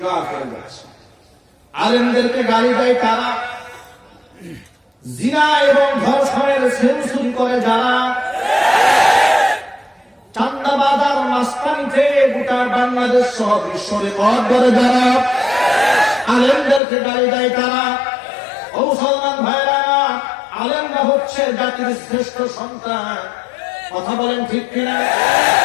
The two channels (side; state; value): right; drops out; at 16.8 s